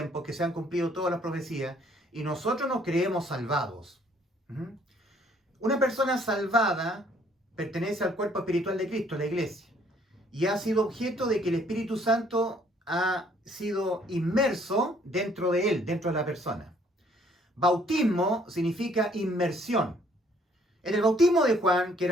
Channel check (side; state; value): both; normal; correlation 0.62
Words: que se han cumplido todas las profecías, y nosotros nos creemos salvados. Una persona salvada pertenece al cuerpo espiritual de Cristo, la iglesia, y ha sido objeto de que el Espíritu Santo ha sido inmerso dentro de él, dentro de la persona. Bautismo significa inmersión. En el bautismo de Juan, que